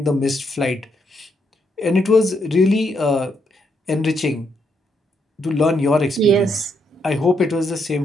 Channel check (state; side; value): normal; both; correlation 0.77